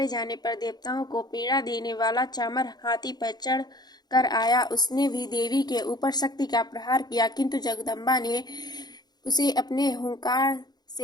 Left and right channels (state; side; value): late; right; 0.20 ms